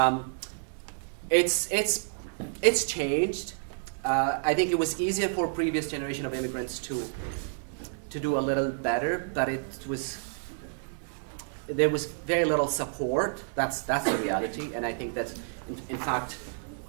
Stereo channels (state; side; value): silent; left; digital silence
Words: it's changed. I think it was easier for previous generation of immigrants to do a little better, but there was very little support. That's the reality, and I think that in fact